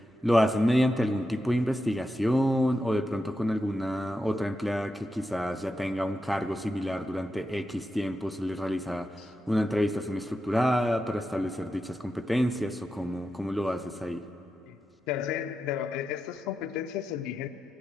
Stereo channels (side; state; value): both; normal; correlation 0.88